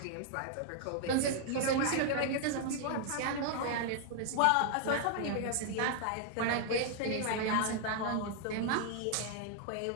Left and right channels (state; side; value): different; both; correlation 0.00